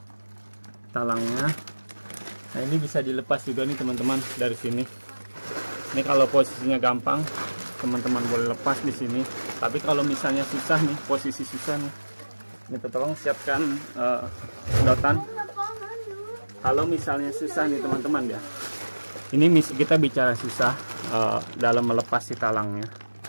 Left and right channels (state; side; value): inverted; both; correlation -1.00